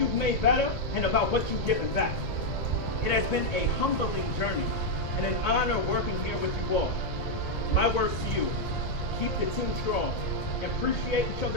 made better, and about what you've given back. It has been a humbling journey and an honor working here with you all. My words to you, keep the team strong, appreciate each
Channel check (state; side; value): late; right; 2.0 ms